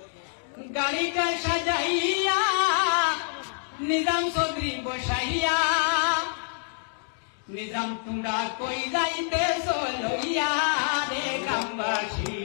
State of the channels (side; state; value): right; silent; digital silence